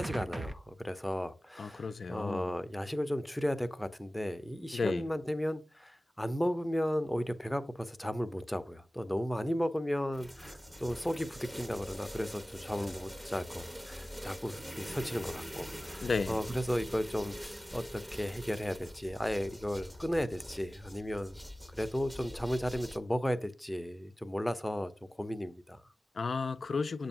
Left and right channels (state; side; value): normal; both; correlation 0.97